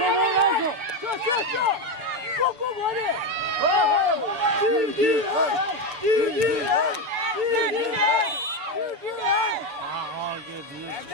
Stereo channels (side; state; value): left; late; 6.9 ms